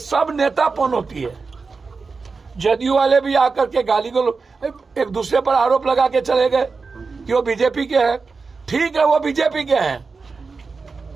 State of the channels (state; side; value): quieter; left; 4.5 dB